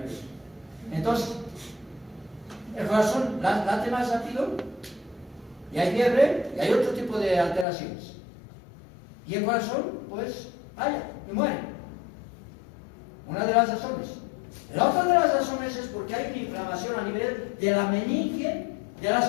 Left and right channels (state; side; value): drops out; right; at 7.7 s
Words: Entonces, el corazón late más rápido, y hay fiebre, y hay otro tipo de alteraciones. Y el corazón, pues, falla y muere. Una de las razones. La otra de las razones es porque hay una inflamación a nivel de la meninge, de